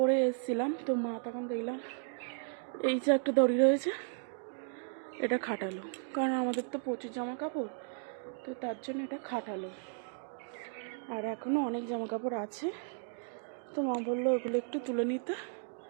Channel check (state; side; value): silent; left; 55 dB below the other